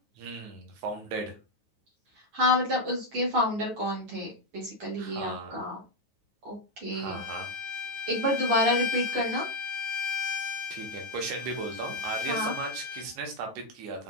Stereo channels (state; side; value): late; left; 9.3 ms